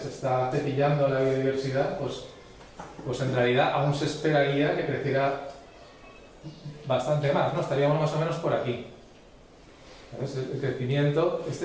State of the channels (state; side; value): identical; both; correlation 1.00